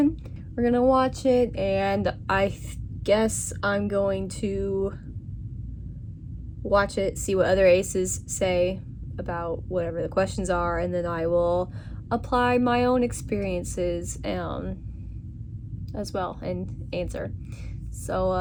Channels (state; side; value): identical; both; correlation 1.00